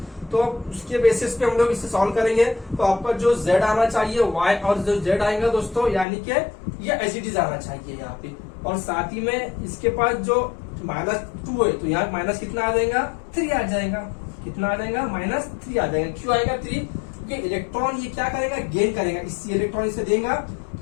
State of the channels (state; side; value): drops out; right; at 6.1 s